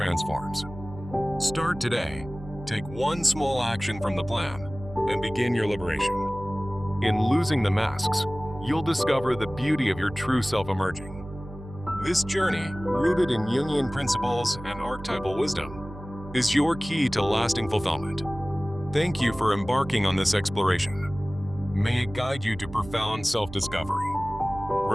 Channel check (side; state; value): right; noise; hum, 14 dB below the sound